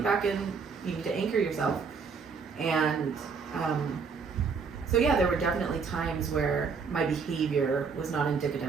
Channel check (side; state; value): left; quieter; 5.4 dB